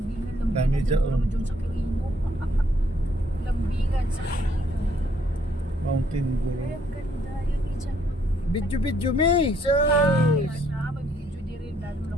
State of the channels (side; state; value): both; normal; correlation 0.67